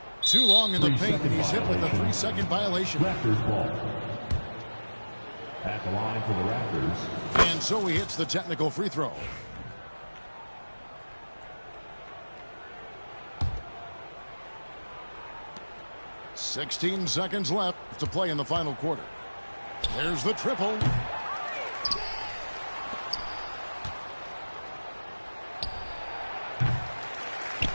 Too long in the paint, and he's hit with a 3-second violation. Raptors ball. At the line for the Raptors. And so he hits the technical free throw. "16 seconds left to play in the final quarter. There's the triple.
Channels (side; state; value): both; inverted; correlation -1.00